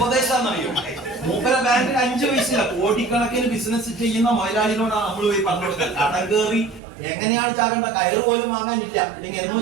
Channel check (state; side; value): drops out; left; at 6.8 s